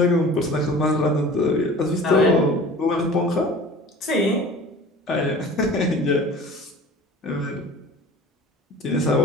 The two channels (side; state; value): both; normal; correlation 0.43